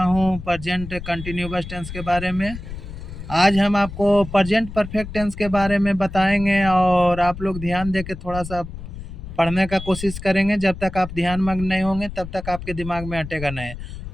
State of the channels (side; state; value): left; noise; rumble, 11 dB below the sound